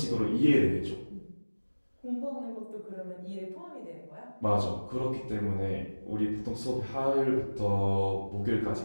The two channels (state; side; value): inverted; both; correlation -1.00